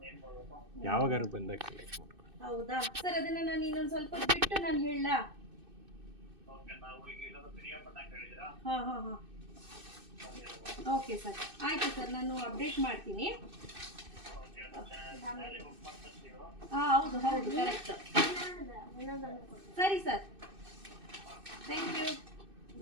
ಯಾವಾಗಾರು ಬಂದಾಗ ಕಲೆಕ್ಟ್ ಮಾಡ್ಕೊಂಡು. ಹೌದಾ ಸರ್, ಅದನ್ನ ನಾನು ಇನ್ನೊಂದು ಸ್ವಲ್ಪ ಬಿಟ್ಟು ನಾನು ಹೇಳಲಾ? ಹಾಂ, ಓಕೆ ಸರ್, ಆಯಿತು ಸರ್, ನಾನು ಅಪ್ಡೇಟ್ ಮಾಡ್ತೀನಿ. ಹೌದು, ಕರೆಕ್ಟ್. ಸರಿ ಸರ್, ಥ್ಯಾಂಕ್ ಯು.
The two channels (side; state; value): left; late; 2.6 ms